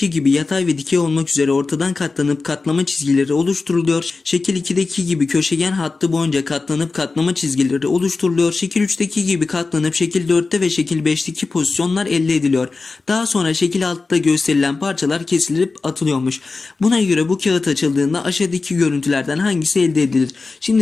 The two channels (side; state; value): right; quieter; 3.9 dB